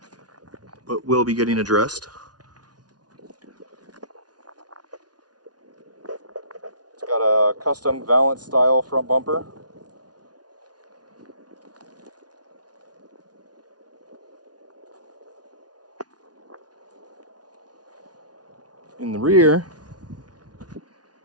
but will be getting addressed. It's got a custom Valance style front bumper. In the rear,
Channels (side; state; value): left; late; 0.69 ms